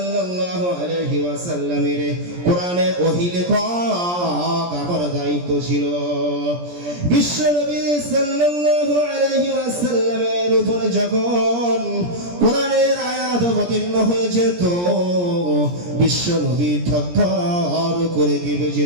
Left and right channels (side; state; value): left; late; 17 ms